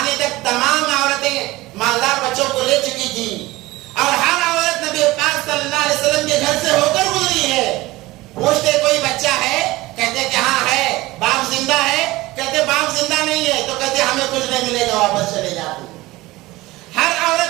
تک تمام عورتیں مالدار بچوں کو لے چکی تھی, اور ہر عورت نبی پاک صلی اللہ علیہ وسلم کے گھر سے ہو کر گزری ہے. پوچھتے کوئی بچہ ہے, کہتے کہ ہاں ہے. باپ زندہ ہے, کہتے باپ زندہ نہیں ہے, تو کہتے ہمیں کچھ نہیں ملے گا, واپس چلے جاتے. ہر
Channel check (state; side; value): quieter; left; 19.4 dB